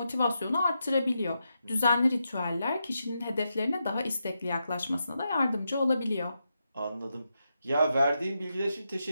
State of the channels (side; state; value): both; inverted; correlation -0.86